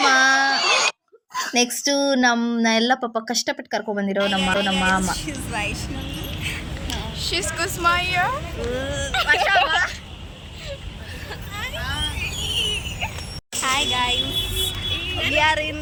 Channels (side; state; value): both; identical; correlation 1.00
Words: ನೆಕ್ಸ್ಟ್ ಎಲ್ಲ ಪಾಪ ಕಷ್ಟಪಟ್ಟು ಕರ್ಕೊಂಡ್ ಬಂದಿರೋ ನಮ್ಮ ಮಾಮ. She's Kusma here. Hi guys. We are in